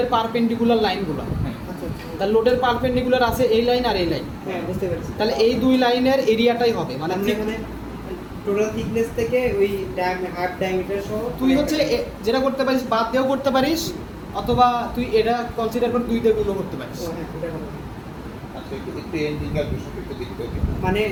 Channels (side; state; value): both; identical; correlation 1.00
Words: পারপেন্ডিকুলার লাইনগুলো, হ্যাঁ। আচ্ছা আচ্ছা। তাহলে লোডের পারপেন্ডিকুলার আছে এই লাইন আর এই লাইন, হ্যাঁ বুঝতে পেরেছি। তাহলে এই দুই লাইনের এরিয়াটাই হবে মানে মানে এখানে টোটাল থিকনেস থেকে ওই হাফ ডায়ামিটার সহ তুই হচ্ছে যেটা করতে পারিস বাদ দিয়েও করতে পারিস, অথবা তুই এটা কনসিডার করে 2 দিয়ে গুণও করতে পারিস। ও হ্যাঁ, এটা ভালো। আচ্ছা একটু এন্ডিং ক্যালকুলেশন একটু দেখতে হবে। মানে